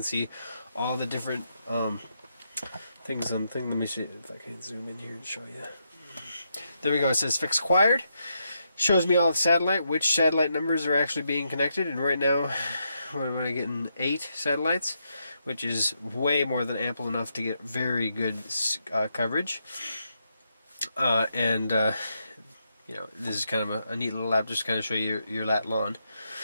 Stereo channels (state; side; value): inverted; both; correlation -0.81